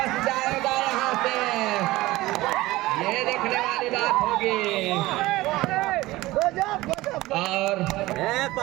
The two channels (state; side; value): quieter; left; 18.6 dB